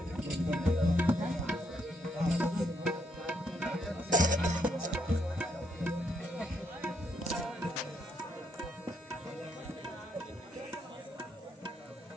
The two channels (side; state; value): both; normal; correlation 0.75